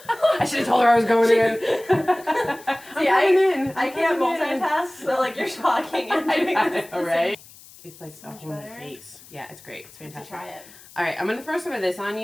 I should have told her I was going in. See, I can't multitask, so like you're talking and doing this. All right. It's like a whole face. Yeah, it's great. It's fantastic. Try it. All right, I'm going to throw some of this on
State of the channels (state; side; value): noise; left; hiss, 22 dB below the sound